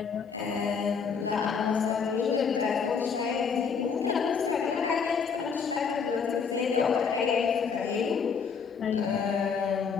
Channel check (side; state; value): right; quieter; 6.1 dB